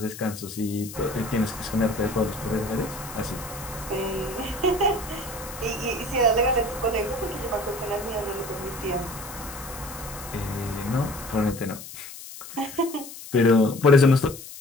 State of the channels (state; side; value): noise; left; hiss, 13 dB below the sound